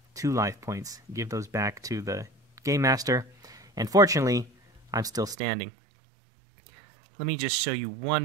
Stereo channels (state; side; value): drops out; left; at 5.4 s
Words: 2 life points, give those back to the Game Master, and fortunately I'm still standing. Let me just show you one